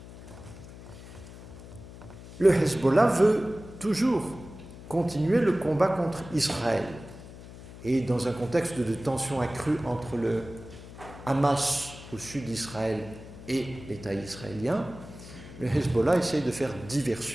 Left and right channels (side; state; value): left; noise; hum, 16 dB below the sound